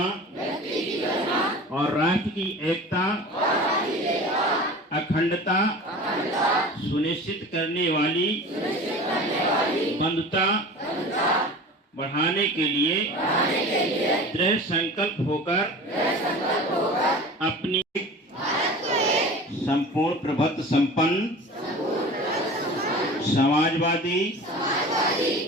और राष्ट्र की एकता अखंडता सुनिश्चित करने वाली बंधुता बढ़ाने के लिए दृढ़ संकल्प होकर अपनी संपूर्ण प्रभुत्व संपन्न समाजवादी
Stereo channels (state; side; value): normal; both; correlation 0.37